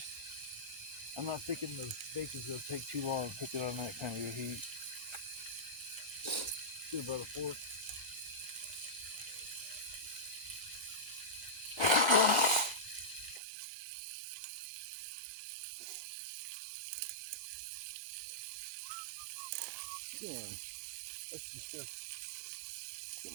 I'm not thinking the bacon's going to take too long to cook it on that kind of a heat. Get about a fork. Yeah, that's the stuff. Get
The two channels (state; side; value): drops out; left; at 13.4 s